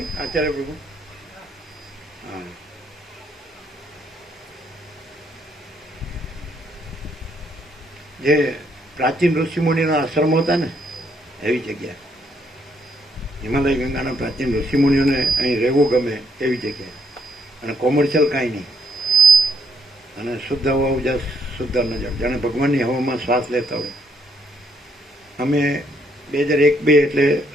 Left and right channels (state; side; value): normal; both; correlation 0.72